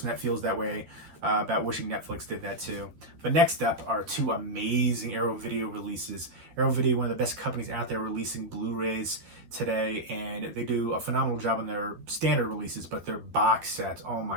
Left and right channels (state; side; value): late; left; 13 ms